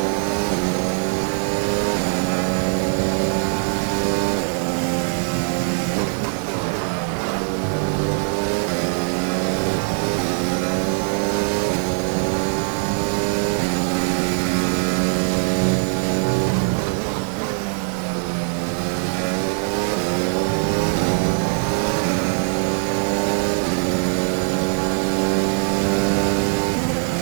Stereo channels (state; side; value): silent; left; 56 dB below the other